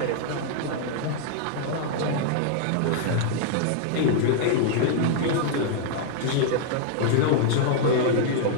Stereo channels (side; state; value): both; different; correlation -0.01